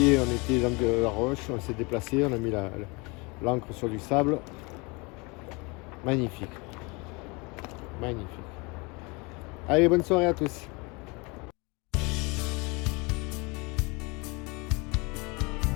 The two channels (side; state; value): right; quieter; 27.8 dB